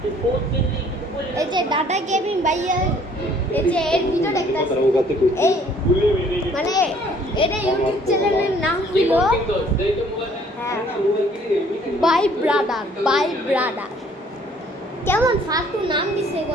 এই যে দাদা গেমিং ভাইয়া, এই যে এর ভিডিও দেখতেছি, এই মানে এটা ইউটিউব চ্যানেলের নাম হলো বাই ব্রাদার। কেমন ফালতু নাম দিছে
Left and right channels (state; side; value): normal; both; correlation 0.58